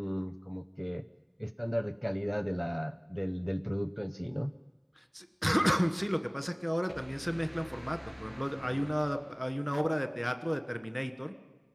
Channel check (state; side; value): identical; both; correlation 1.00